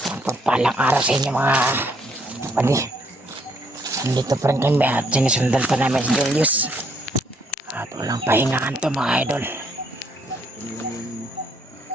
pagpalang araw sa inyo, mga kapatid. Nandito pa rin kami at sinisundan pa namin si Julius. At walang pahingaan to, mga idol.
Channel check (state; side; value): normal; both; correlation 0.69